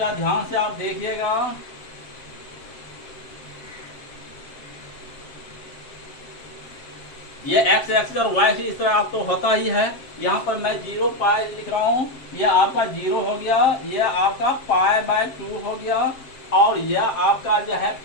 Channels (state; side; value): late; right; 7.5 ms